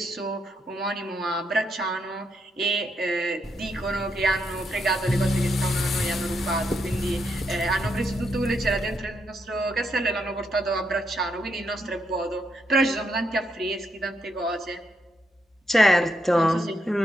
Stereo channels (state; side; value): normal; both; correlation 0.79